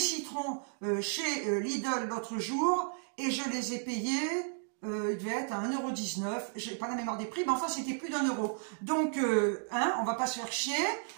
chez Lidl l'autre jour et je les ai payés... il devait être à 1,19 €, j'ai pas la mémoire des prix, mais enfin c'était plus d'1 €. Donc, hein, on va pas se faire chier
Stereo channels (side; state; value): left; silent; 55 dB below the other